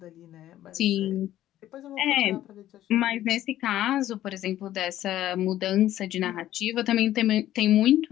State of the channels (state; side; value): quieter; right; 13.2 dB